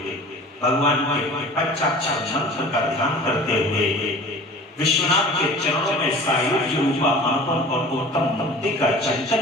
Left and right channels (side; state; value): both; normal; correlation 0.42